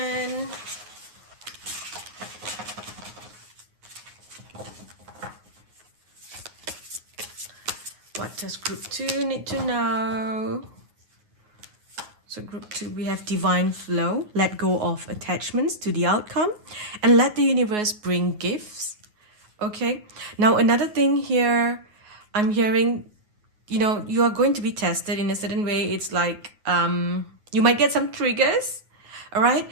What does group 2 need to know? So group 2, we have divine flow. Let go of attachments to the outcome and let the universe bring gifts. Okay. Now, another thing here, I'm hearing, you know, you are going to be tested in a certain way. It's like you might get some triggers. All right.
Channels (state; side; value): late; left; 9.5 ms